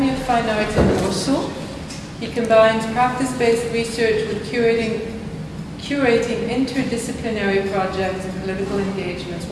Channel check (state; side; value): identical; both; correlation 1.00